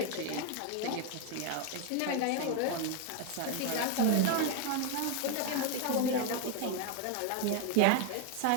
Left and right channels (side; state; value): both; different; correlation 0.01